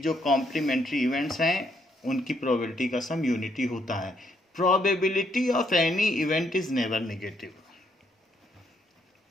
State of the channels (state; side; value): normal; both; correlation 0.73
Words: कॉम्प्लीमेंट्री इवेंट्स हैं उनकी प्रोबेबिलिटी का सम यूनिटी होता है। Probability of any event is never negative.